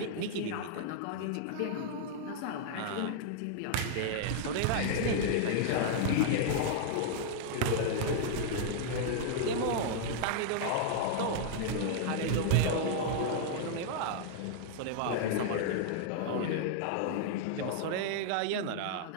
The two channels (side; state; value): both; different; correlation -0.01